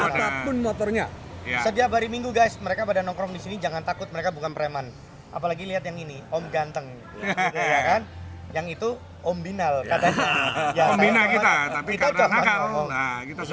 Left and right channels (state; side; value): identical; both; correlation 1.00